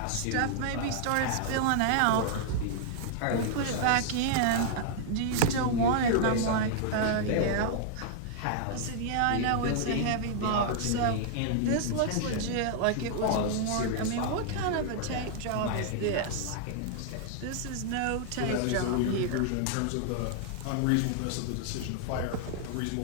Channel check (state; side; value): different; both; correlation -0.01